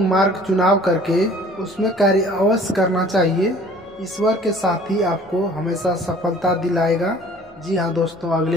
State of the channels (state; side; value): normal; both; correlation 0.51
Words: मार्ग चुनाव करके उसमें कार्य अवश्य करना चाहिए। ईश्वर के साथ ही आपको हमेशा सफलता दिलाएगा। जी हाँ दोस्तों,